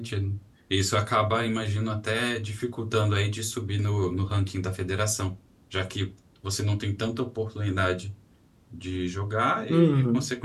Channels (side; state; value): both; identical; correlation 1.00